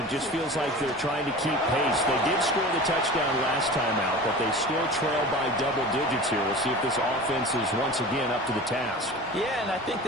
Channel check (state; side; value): normal; both; correlation 0.36